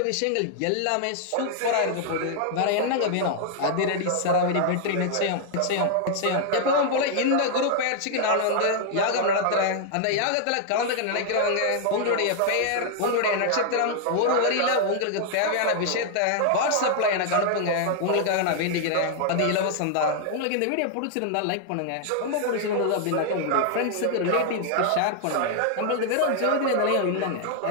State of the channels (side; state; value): both; different; correlation 0.00